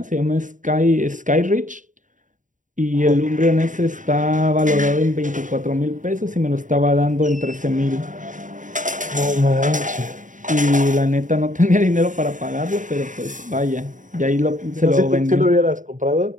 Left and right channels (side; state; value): left; late; 0.37 ms